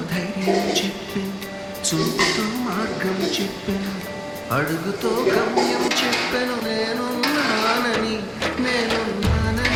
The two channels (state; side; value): identical; both; correlation 1.00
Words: ధైర్యం చెప్పి చూపుతో మార్గం చెప్పెను, అడుగుతో గమ్యం చెప్పెను, నేనున్నానని